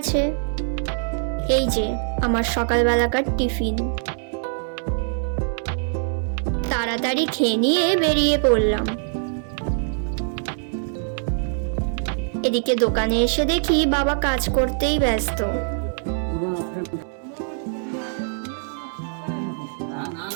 এই যে আমার সকালবেলাকার টিফিন। তাড়াতাড়ি খেয়ে নিয়ে বেরিয়ে পড়লাম। এদিকে দোকানে এসে দেখি বাবা কাজ করতেই ব্যস্ত।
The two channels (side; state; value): left; silent; digital silence